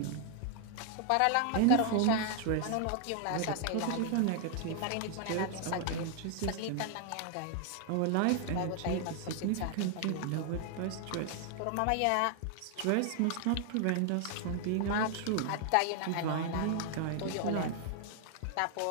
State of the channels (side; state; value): both; different; correlation 0.00